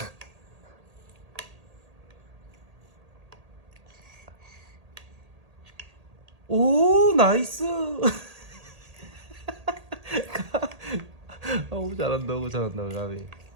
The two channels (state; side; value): late; left; 1.8 ms